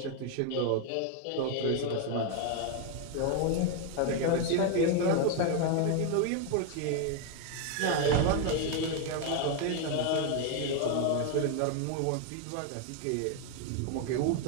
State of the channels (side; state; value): both; different; correlation 0.01